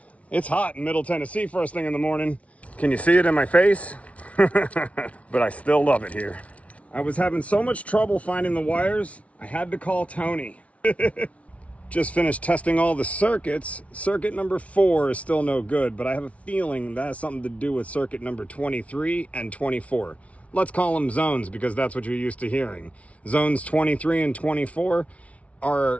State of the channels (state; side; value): late; right; 0.065 ms